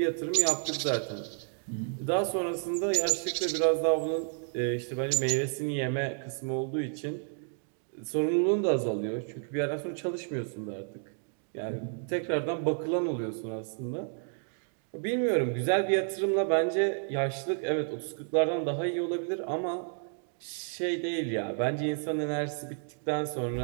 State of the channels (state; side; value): silent; left; 57 dB below the other